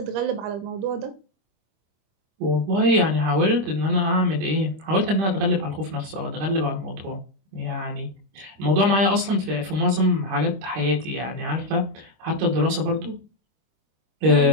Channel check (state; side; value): late; left; 25 ms